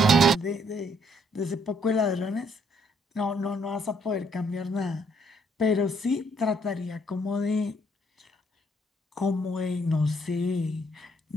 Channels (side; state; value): both; normal; correlation 0.68